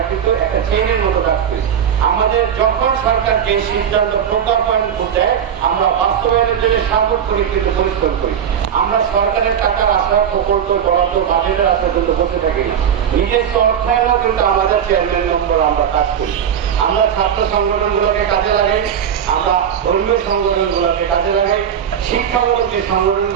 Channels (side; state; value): left; quieter; 8.5 dB